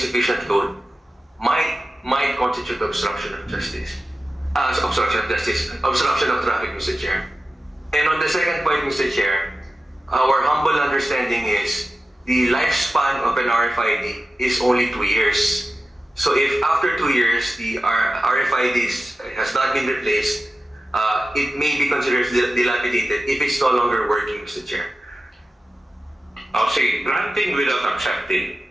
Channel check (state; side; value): normal; both; correlation 0.94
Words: load might constitute obstruction of justice. Obstruction of traffic, Mr. Chair. And on the second point, Mr. Chair, our humble understanding is the lifespan of an RFID is only 2 years. So if after 2 years the RFID has not been replaced, it may be considered dilapidated if it's no longer working, Mr. Chair. O sige, granting without accepting.